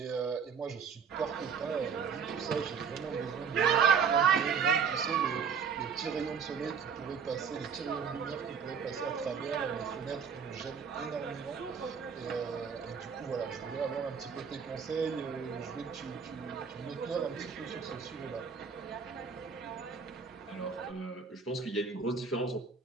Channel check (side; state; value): left; quieter; 6.4 dB